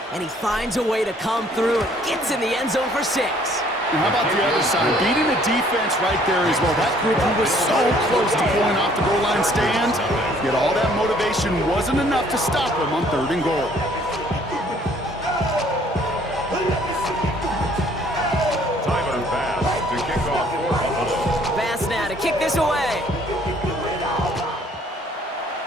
And he finds a way to come through and gets in the end zone for 6. And how about the other side? Beating the defense right there as well. That group who was so close to pulling off the goal line stand, yet all that motivation wasn't enough to stop them on 3rd and goal. Tyler Bass to kick off for Buffalo. Bass now to kick this away.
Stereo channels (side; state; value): both; normal; correlation 0.60